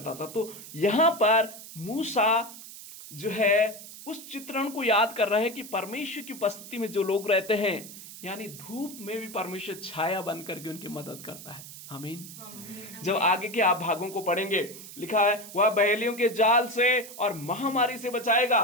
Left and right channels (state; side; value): noise; right; hiss, 14 dB below the sound